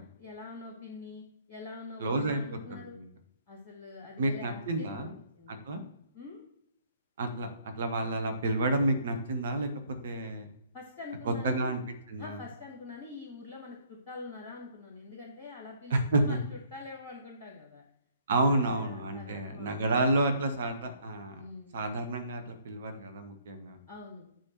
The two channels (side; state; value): both; inverted; correlation -0.63